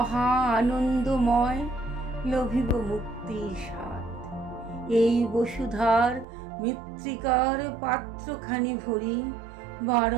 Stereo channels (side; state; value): left; drops out; at 6.2 s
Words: আনন্দময়, লভিব মুক্তির স্বাদ। এই বসুধার মৃত্তিকার পাত্রখানি ভরি